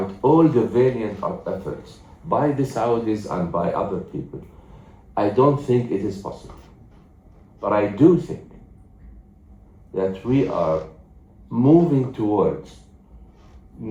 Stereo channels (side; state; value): both; identical; correlation 1.00